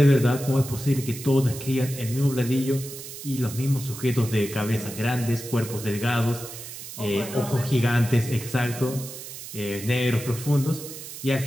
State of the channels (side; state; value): right; noise; hiss, 11 dB below the sound